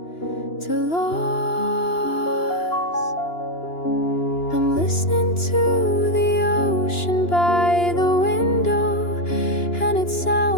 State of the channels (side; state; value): right; late; 2.9 ms